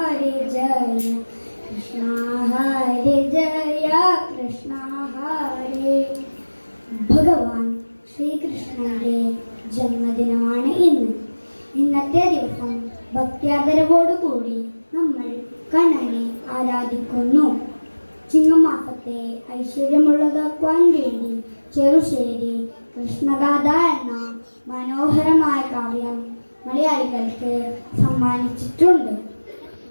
ജയ കൃഷ്ണ ഹരേ ജയ കൃഷ്ണ ഹരേ. ഭഗവാൻ ശ്രീകൃഷ്ണന്റെ ജന്മദിനമാണ് ഇന്ന്. ഇന്നത്തെ ദിവസം ഭക്ത്യാദരവോടുകൂടി നമ്മൾ കണ്ണനെ ആരാധിക്കുന്നു. ചിങ്ങമാസത്തെ ഐശ്വര്യമുള്ളതാക്കുവാൻ വേണ്ടി ചെറുശ്ശേരി കൃഷ്ണഗാഥ എന്ന മനോഹരമായ കാവ്യം മലയാളികൾക്ക് സമ്മാനിച്ചിട്ടുണ്ട്.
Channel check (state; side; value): inverted; both; correlation -1.00